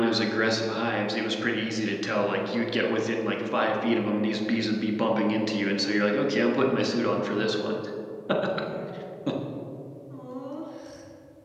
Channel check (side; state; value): both; identical; correlation 1.00